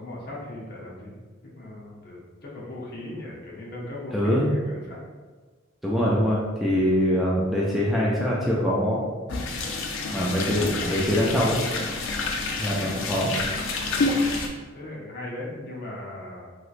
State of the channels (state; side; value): normal; both; correlation 0.52